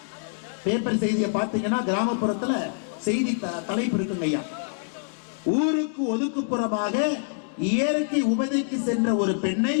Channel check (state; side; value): silent; right; digital silence